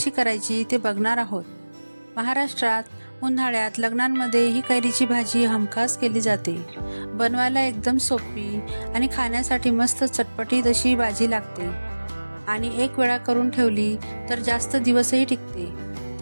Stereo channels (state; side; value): inverted; both; correlation -1.00